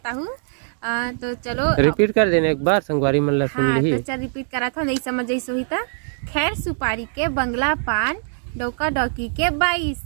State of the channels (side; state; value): left; silent; 64 dB below the other